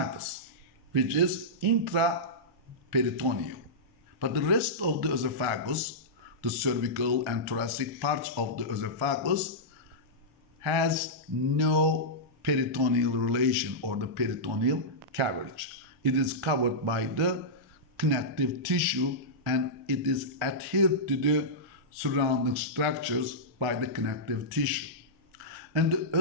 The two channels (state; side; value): late; left; 1.7 ms